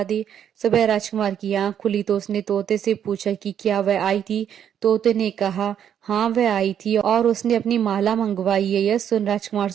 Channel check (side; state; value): left; quieter; 9.2 dB